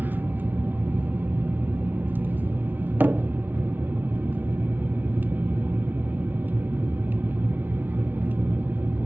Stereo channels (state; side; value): late; left; 0.085 ms